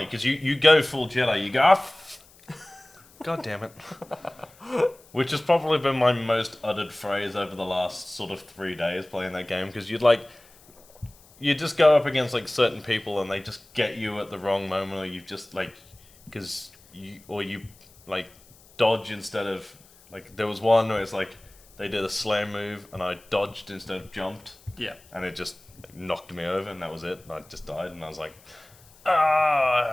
because you go full Jedi, you go, God damn it. Which has probably been my most uttered phrase over the last sort of 3 days playing that game, because you just go up against like certain people and they just get you at the wrong moment, or you just like, you like dodge instead of, like, there was one where it's like, they did a slam move and I dodged instead of jumped. Yeah. And it just knocked me over and that was it. And I just died and I was like,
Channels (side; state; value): left; noise; hiss, 27 dB below the sound